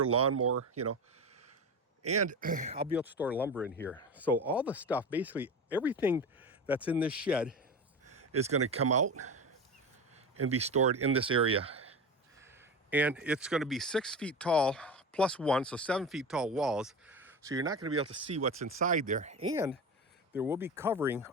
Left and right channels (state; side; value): normal; both; correlation 0.25